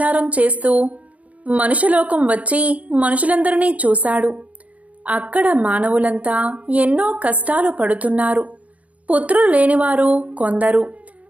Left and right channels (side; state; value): left; late; 0.069 ms